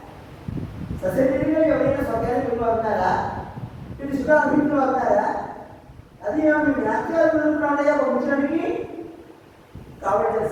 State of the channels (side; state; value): both; identical; correlation 1.00